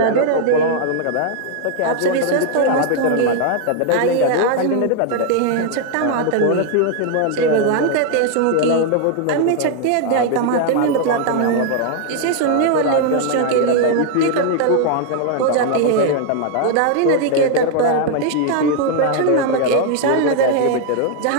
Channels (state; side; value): different; both; correlation 0.00